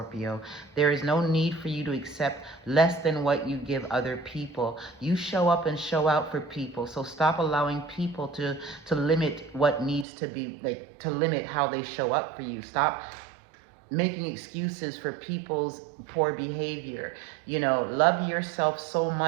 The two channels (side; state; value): left; drops out; at 10.1 s